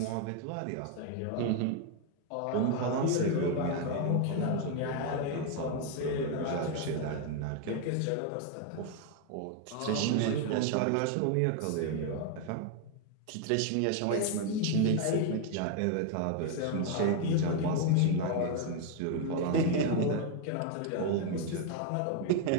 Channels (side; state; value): both; different; correlation 0.01